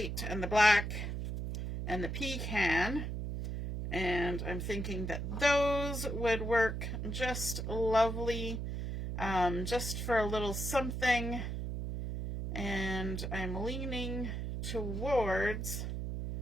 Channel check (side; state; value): right; noise; hum, 4 dB below the sound